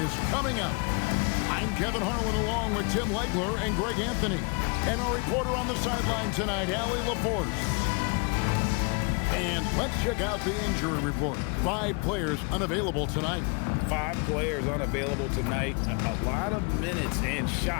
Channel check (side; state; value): right; quieter; 32.6 dB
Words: coming up. I'm Kevin Harlan along with Tim Legler and Greg Anthony. And our reporter on the sideline tonight, Allie LaForce. And let's check out the injury report. 5 players unavailable tonight. 5 players unavailable tonight. A lot of minutes and